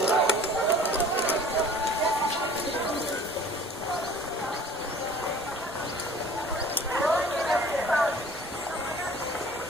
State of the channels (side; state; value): both; normal; correlation 0.47